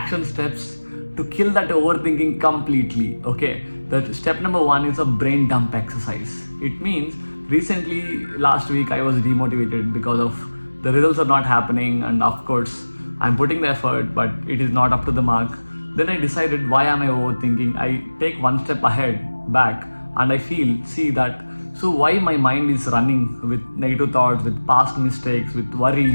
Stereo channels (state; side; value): inverted; both; correlation -1.00